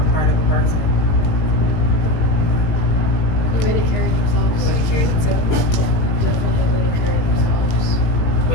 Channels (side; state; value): right; late; 19 ms